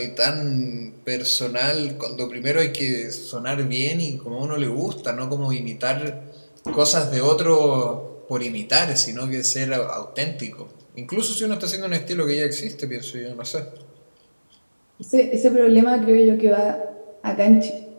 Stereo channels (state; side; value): inverted; both; correlation -1.00